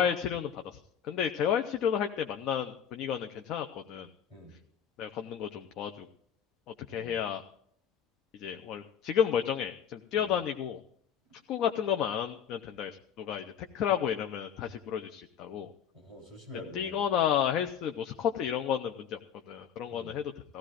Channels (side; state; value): right; quieter; 8.4 dB